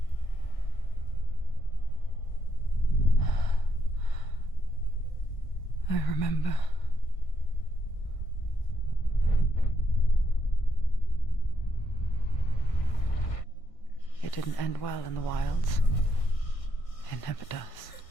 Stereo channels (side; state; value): right; late; 1.6 ms